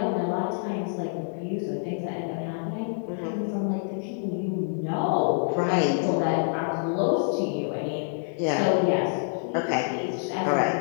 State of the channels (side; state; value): right; silent; 60 dB below the other